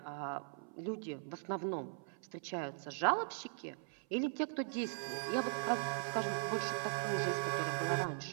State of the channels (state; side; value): silent; left; 51 dB below the other